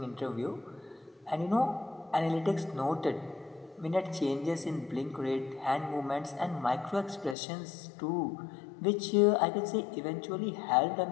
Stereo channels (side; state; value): right; drops out; at 7.4 s